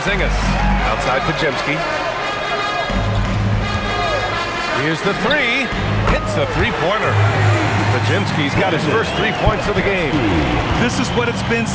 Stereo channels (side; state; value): both; identical; correlation 1.00